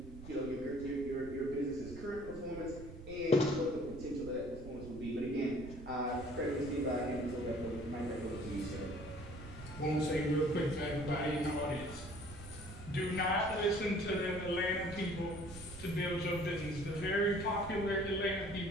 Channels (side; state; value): right; noise; rumble, 13 dB below the sound